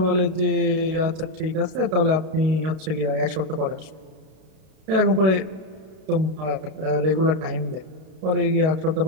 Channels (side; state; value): left; late; 32 ms